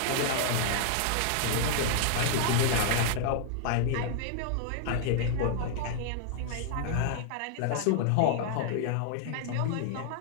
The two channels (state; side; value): different; both; correlation -0.01